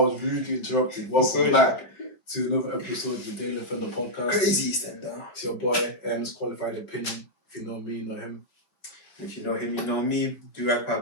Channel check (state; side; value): late; right; 5.0 ms